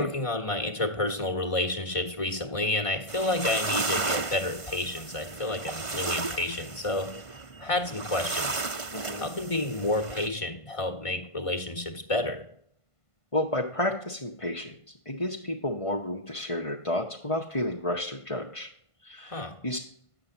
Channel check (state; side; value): late; right; 1.5 ms